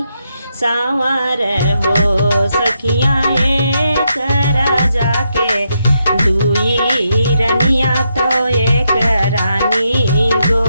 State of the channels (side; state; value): both; inverted; correlation -0.81